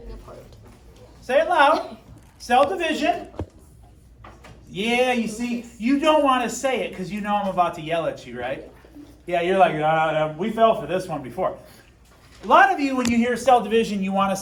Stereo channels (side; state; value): both; identical; correlation 1.00